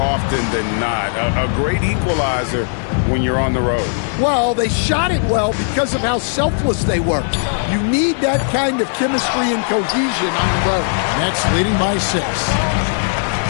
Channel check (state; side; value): silent; right; 63 dB below the other